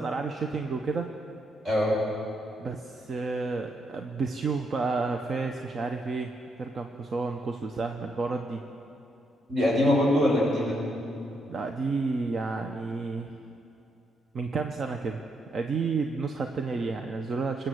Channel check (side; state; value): both; normal; correlation 0.78